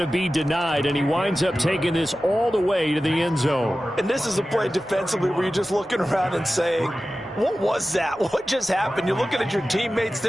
be denied, and he winds up taking this all the way to the end zone. And this is a play defensively where you're just looking around and saying, what was that? What just happened? You're looking at your teammates.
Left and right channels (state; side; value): normal; both; correlation 0.95